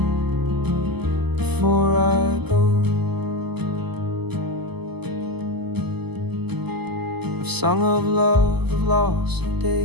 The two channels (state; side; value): late; left; 0.98 ms